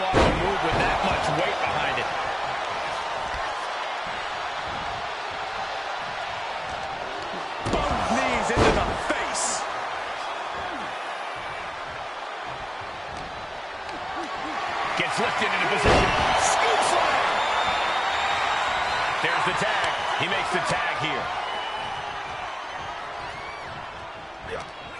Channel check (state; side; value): identical; both; correlation 1.00